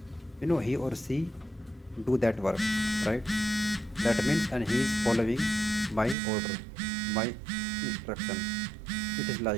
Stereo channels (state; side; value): drops out; left; at 6.2 s